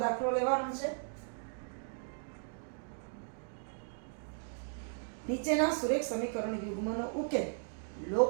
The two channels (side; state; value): left; silent; digital silence